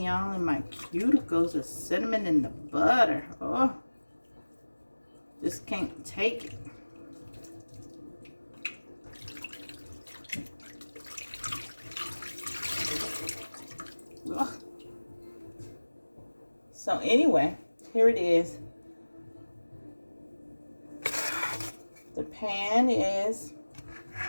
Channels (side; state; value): both; inverted; correlation -1.00